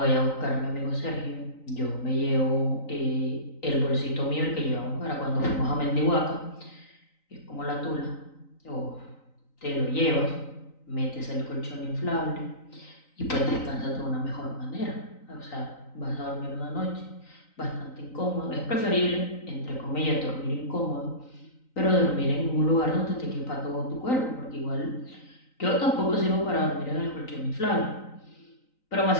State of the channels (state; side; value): late; right; 3.9 ms